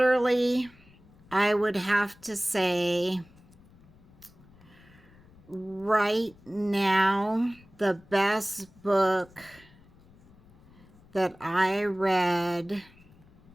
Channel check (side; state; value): left; noise; rumble, 26 dB below the sound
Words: I would have to say right now, the best book that I read